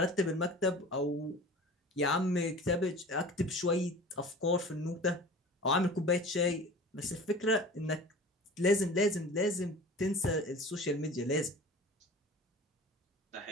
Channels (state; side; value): normal; both; correlation 0.40